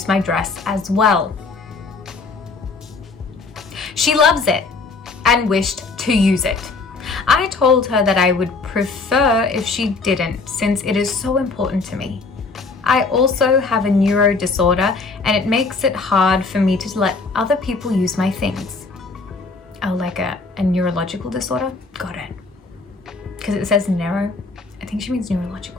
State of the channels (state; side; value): quieter; right; 4.1 dB